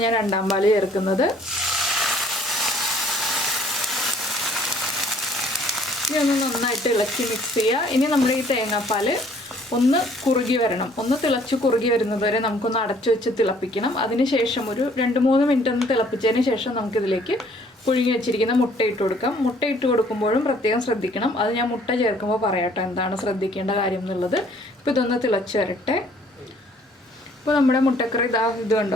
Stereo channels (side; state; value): both; normal; correlation 0.59